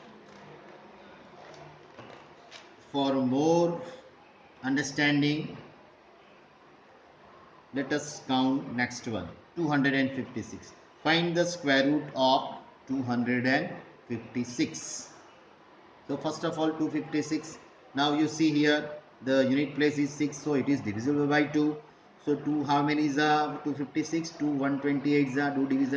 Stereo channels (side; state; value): both; identical; correlation 1.00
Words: for more understanding, let us count next one. 256. Find the square root of 256. So first of all 256. Now you see here the unit place is 6, so it is divisible by 2. So 2 how many is 256? 2 128 is do